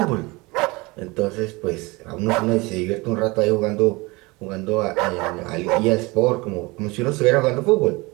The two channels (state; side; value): quieter; left; 24.2 dB